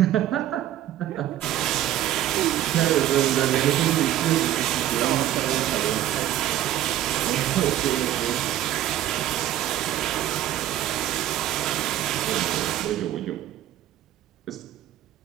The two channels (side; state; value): left; quieter; 12.8 dB